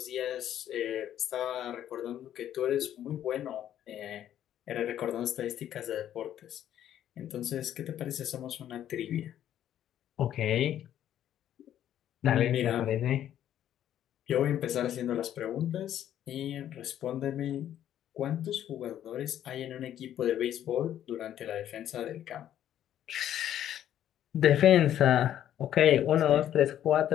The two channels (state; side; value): quieter; right; 11.1 dB